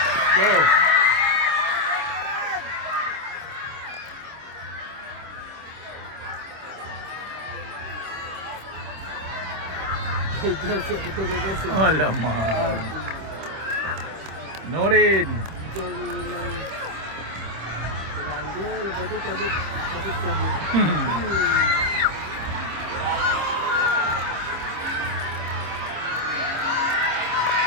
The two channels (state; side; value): late; left; 26 ms